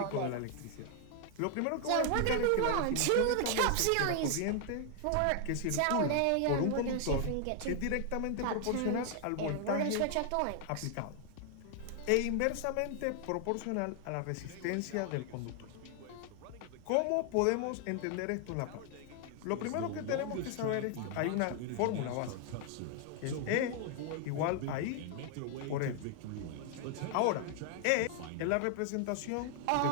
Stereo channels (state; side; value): different; both; correlation 0.00